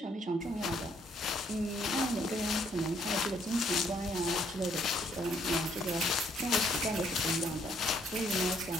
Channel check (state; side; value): normal; both; correlation 0.68